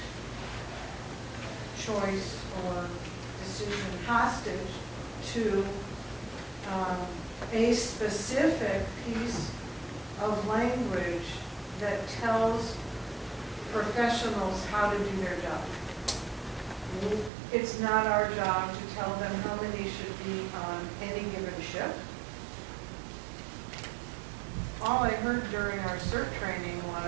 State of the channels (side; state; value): left; drops out; at 17.3 s